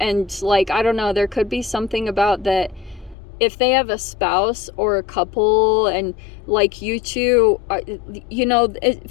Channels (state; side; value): drops out; right; at 3.2 s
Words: and like, I don't know, there could be something about that if they have a spouse or a couple and like you two, you know, it